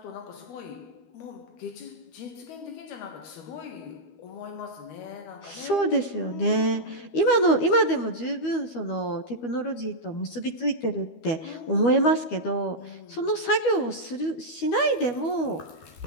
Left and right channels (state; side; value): late; right; 12 ms